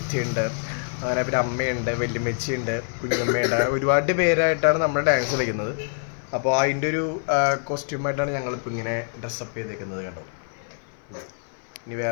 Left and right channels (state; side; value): silent; right; 55 dB below the other